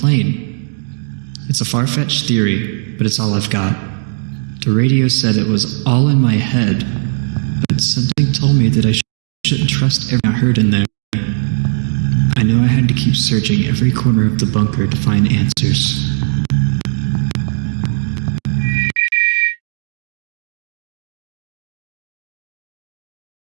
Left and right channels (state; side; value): silent; left; digital silence